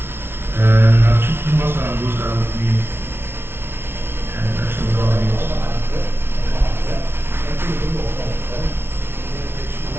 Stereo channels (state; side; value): late; left; 0.11 ms